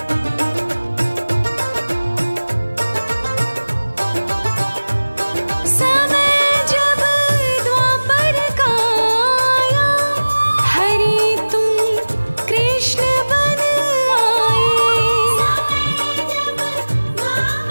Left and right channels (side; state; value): both; inverted; correlation -1.00